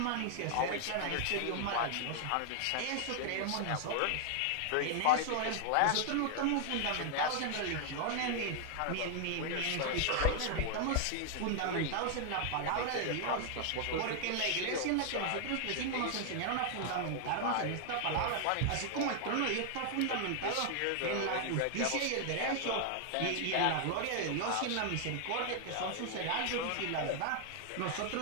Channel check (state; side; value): different; both; correlation 0.00